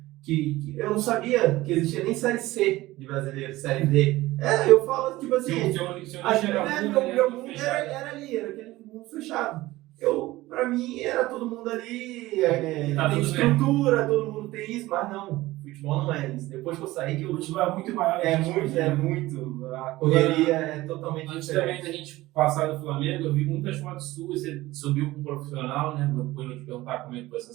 Que eu não sabia que existia nem Série C de brasileiro, Série D. Eu falo, tipo assim, Seu nicho era meu mundo era ali, era aquele mundo fechado. Pra mim, era todo mundo ali, Tá tem tudo estrutura, todo mundo tem isso, mas não, futebol não é isso. Depois que eu saí, que O eu futebol é muito maior. muito, a correria é totalmente Antes diferente. também da gente passar do Flamengo, eu vi muitas fotos suas, você subiu com um profissional, né? Depois eu vou te perguntar como é que foi essa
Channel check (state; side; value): quieter; left; 18.0 dB